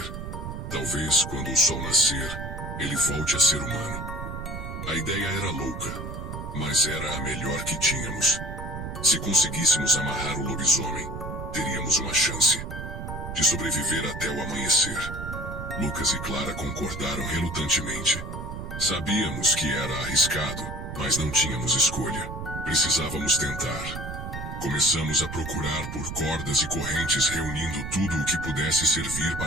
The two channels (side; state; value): right; noise; rumble, 7 dB below the sound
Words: Talvez, quando o sol nascer, ele volte a ser humano." A ideia era louca, mas era a melhor que tínhamos. Se conseguíssemos amarrar o lobisomem, teríamos uma chance de sobreviver até o amanhecer. Lucas e Clara concordaram relutantemente. Sabíamos que era arriscado, mas não tínhamos escolha. Precisávamos tentar. Começamos a procurar por cordas e correntes, reunindo tudo o que pudesse servir